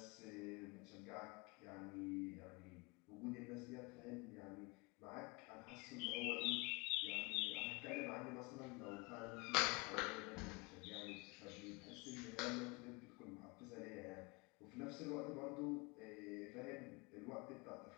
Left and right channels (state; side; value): quieter; right; 27.2 dB